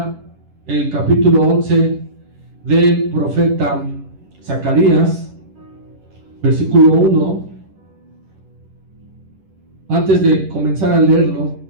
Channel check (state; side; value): late; left; 10 ms